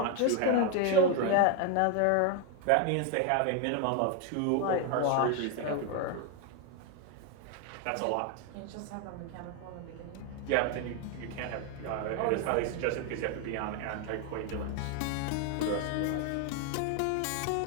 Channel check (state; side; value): different; both; correlation 0.01